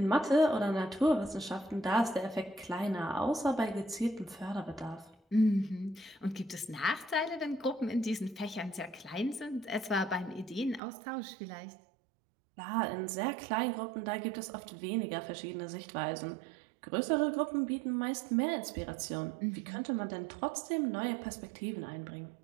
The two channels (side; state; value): left; drops out; at 10.8 s